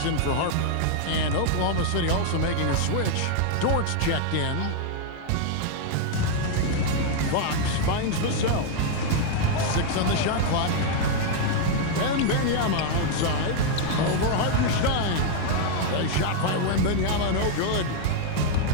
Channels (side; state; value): both; different; correlation 0.00